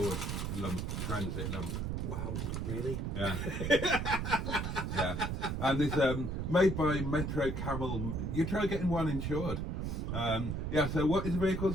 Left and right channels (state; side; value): noise; right; rumble, 2 dB below the sound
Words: Transit lump. Wow, really? Yeah. Yeah. And it's made by Metro Camel. You try getting one insured. Yeah, so what is the vehicle,